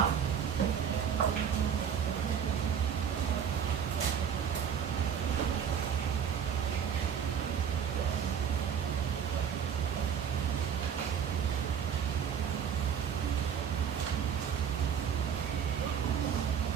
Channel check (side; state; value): left; quieter; 7.9 dB